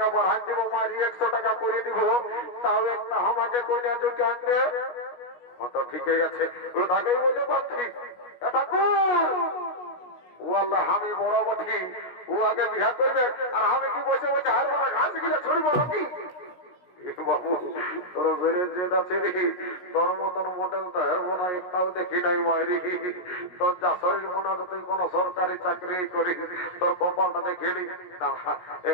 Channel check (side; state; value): right; late; 17 ms